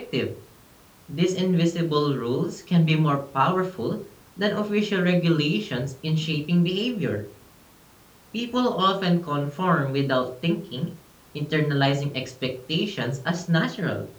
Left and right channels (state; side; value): identical; both; correlation 1.00